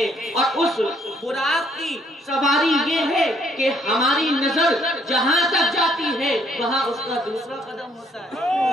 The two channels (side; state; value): both; normal; correlation 0.66